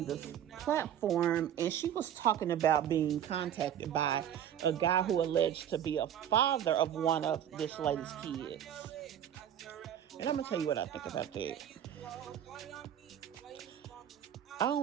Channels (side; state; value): left; quieter; 10.1 dB